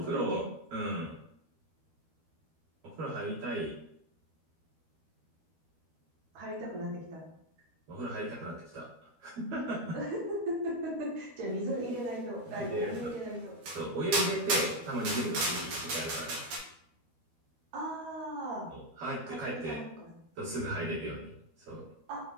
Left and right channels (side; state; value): left; late; 12 ms